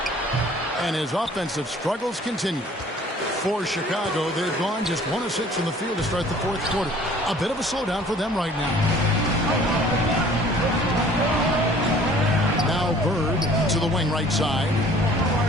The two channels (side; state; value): both; normal; correlation 0.52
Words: And his offensive struggles continue. For Chicago, they've gone just 1 of 6 from the field to start the fourth quarter. A bit of a slowdown for them right now. Now Bird to the wing right side.